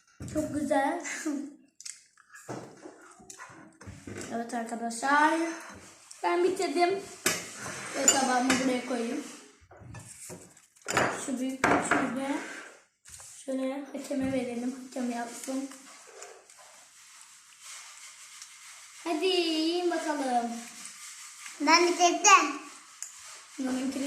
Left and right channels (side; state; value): both; identical; correlation 1.00